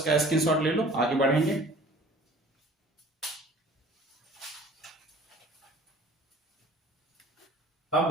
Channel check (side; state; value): both; normal; correlation 0.48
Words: स्क्रीनशॉट ले लो, आगे बढ़ेंगे। अब